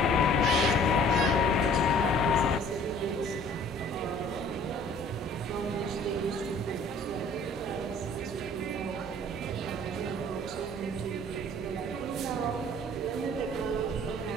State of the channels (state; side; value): normal; both; correlation 0.52